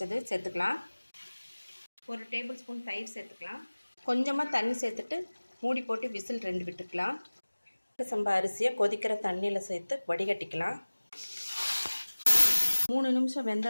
சேர்த்துக்கலாம். 1 டேபிள் ஸ்பூன் தயிர் சேர்த்துக்கலாம். கொஞ்சமாக தண்ணி சேர்த்துட்டு மூடி போட்டு விசில் 2 விட்டுக்கலாம். சம்பா அரிசியை கொதிக்கிற தண்ணியில் சேர்த்து வடிகட்டிக்கலாம். 3 நிமிஷம்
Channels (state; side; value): inverted; both; correlation -1.00